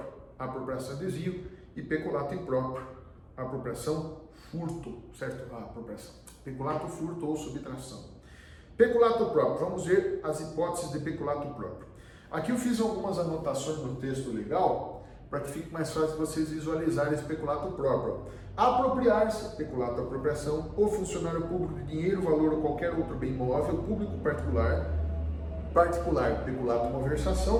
apropriação e desvio, e peculato impróprio, apropriação, furto, certo? Apropriação. Peculato, furto ou subtração. Peculato próprio, vamos ver as hipóteses de peculato próprio. Aqui eu fiz algumas anotações no texto legal, para que fique mais fácil vocês visualizarem esse peculato próprio. Apropriar-se, peculato apropriação, o funcionário público de dinheiro, valor ou qualquer outro bem móvel, público particular, peculato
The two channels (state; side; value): identical; both; correlation 1.00